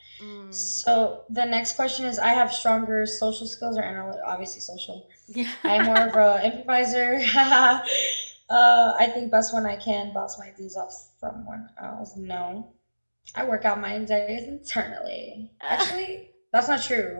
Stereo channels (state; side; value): inverted; both; correlation -1.00